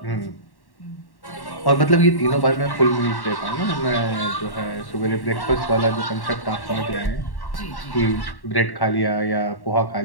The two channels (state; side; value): late; right; 1.1 ms